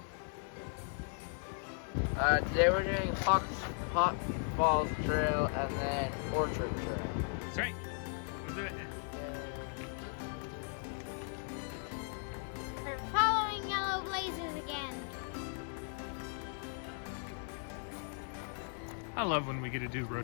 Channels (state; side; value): silent; right; 53 dB below the other